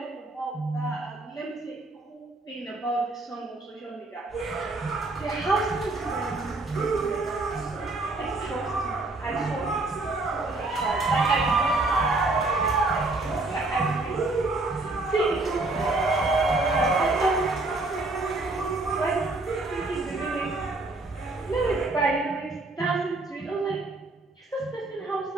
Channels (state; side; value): quieter; left; 3.0 dB